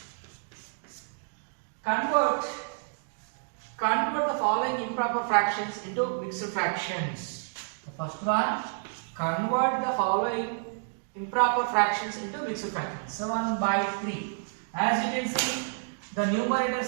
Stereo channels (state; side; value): silent; left; digital silence